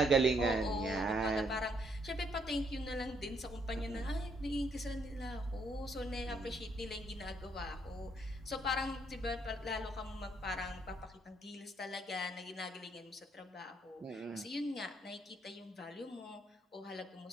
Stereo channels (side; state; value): both; normal; correlation 0.71